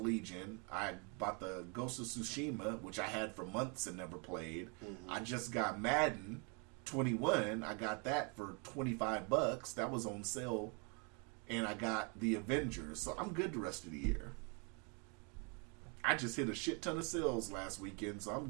I bought the Ghost of Tsushima, which I had for months and never played. I just got Madden 21. I got that for $25. That was on sale. And I got the Avengers. So I'm good the rest of the year. I just hit a shit ton of sales last weekend, so I'm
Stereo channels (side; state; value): left; quieter; 34.6 dB